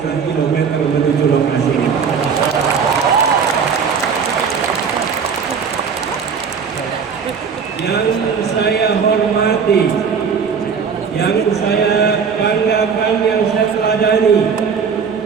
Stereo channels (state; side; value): quieter; left; 6.3 dB